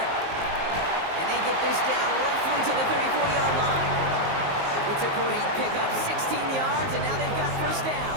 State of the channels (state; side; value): late; left; 19 ms